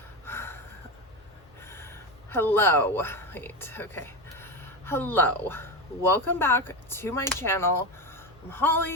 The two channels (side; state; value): both; normal; correlation 0.17